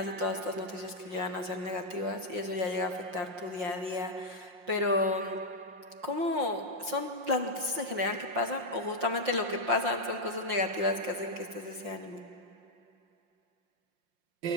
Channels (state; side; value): late; left; 5.6 ms